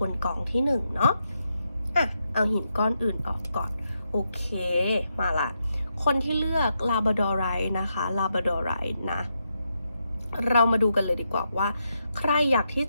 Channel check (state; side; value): inverted; both; correlation -0.83